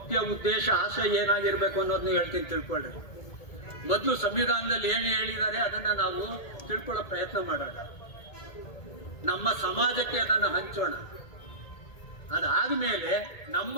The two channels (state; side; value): late; right; 1.8 ms